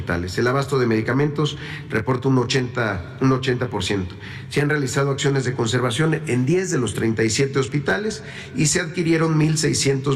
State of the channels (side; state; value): both; identical; correlation 1.00